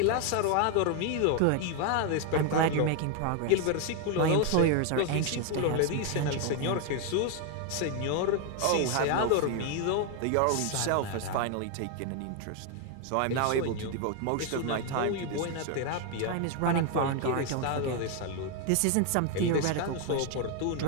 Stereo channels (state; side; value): different; both; correlation 0.01